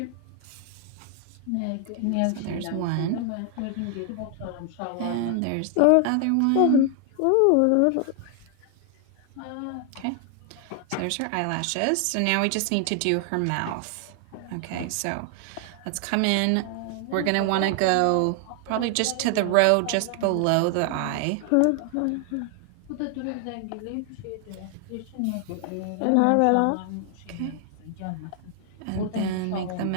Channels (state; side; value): different; both; correlation 0.00